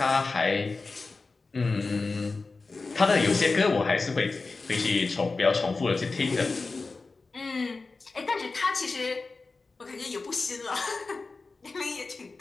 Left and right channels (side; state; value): right; quieter; 3.9 dB